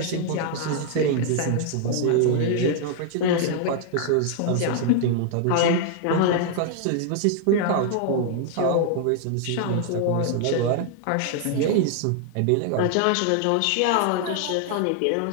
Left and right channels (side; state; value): both; different; correlation 0.00